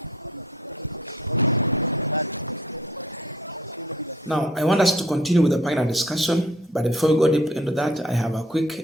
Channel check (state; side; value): normal; both; correlation 0.55